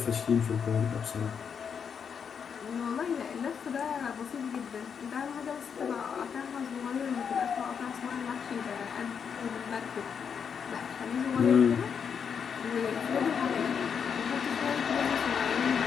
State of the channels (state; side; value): quieter; right; 6.9 dB